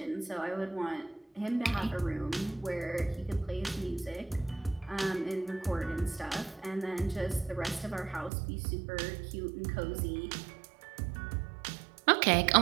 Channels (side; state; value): left; drops out; at 8.3 s